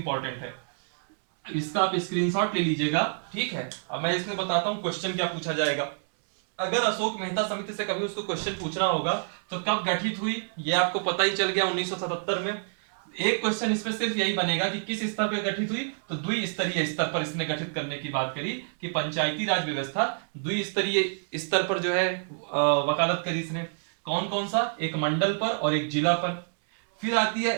है। इसका आप स्क्रीनशॉट ले लीजिएगा। ठीक है, अब मैं इसमें बताता हूं क्वेश्चन क्या पूछा जाएगा। अगर अशोक मेहता समिति से कभी उसको क्वेश्चन पूछना होगा तो कब गठित हुई, यह आपको पता ही चल गया 1977 में। एक क्वेश्चन इसमें सिर्फ यही बनेगा कि किस स्तर पर गठित हुई, तो द्विस्तरीय स्तर पर इसने गठित करने की बात करी कि पंचायती राज व्यवस्था द्विस्तरीय स्तर पर जो है वकालत करी इसने। कौन कौन सा, एक मंडल पर और एक जिला पर। फिर आती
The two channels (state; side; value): silent; left; 60 dB below the other